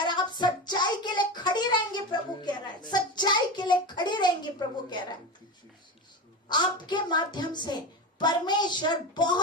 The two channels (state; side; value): normal; both; correlation 0.22